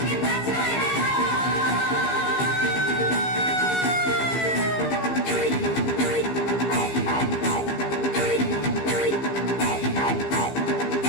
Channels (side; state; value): right; late; 15 ms